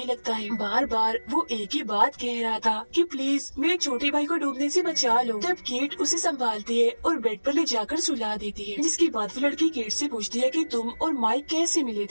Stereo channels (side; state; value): both; inverted; correlation -1.00